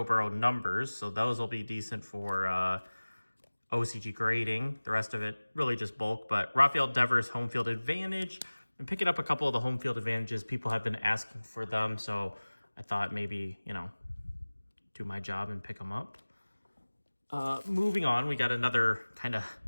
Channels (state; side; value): inverted; both; correlation -1.00